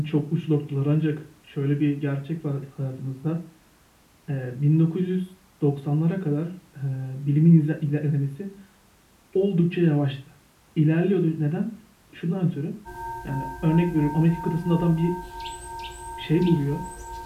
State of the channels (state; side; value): identical; both; correlation 1.00